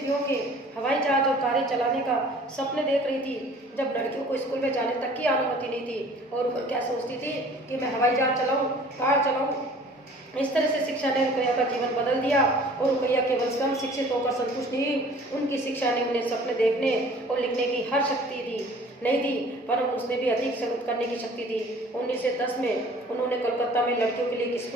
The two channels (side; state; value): both; normal; correlation 0.50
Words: के हवाई जहाज और कारें चलाने का सपने देख रही थी, जब लड़कियों को स्कूल में जाने तक की अनुमति नहीं थी। और वो क्या सोचती थी कि मैं हवाई जहाज चलाऊं, कार चलाऊं। इस तरह से शिक्षा ने रुकैया का जीवन बदल दिया और रुकैया केवल कम शिक्षित होकर संतुष्ट नहीं, उनकी शिक्षा ने उन्हें सपने देखने और लिखने की हर शक्ति नहीं दी, पर उसने भी अधिक करने की शक्ति दी। 1910 में उन्होंने कोलकाता में लड़कियों के लिए एक